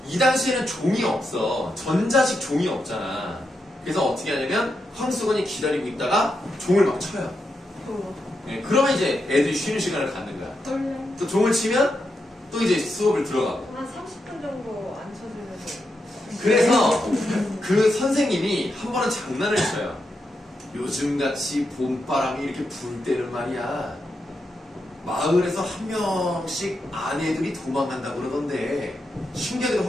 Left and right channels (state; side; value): normal; both; correlation 0.85